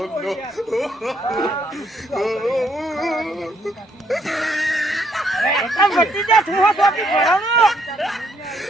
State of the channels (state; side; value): normal; both; correlation 0.71